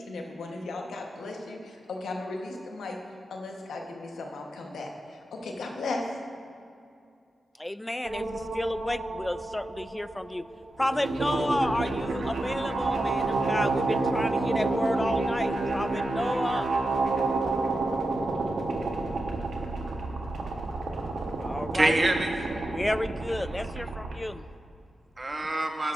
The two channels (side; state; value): both; normal; correlation 0.90